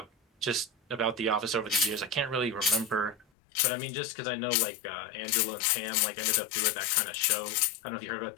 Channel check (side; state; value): right; drops out; at 3.2 s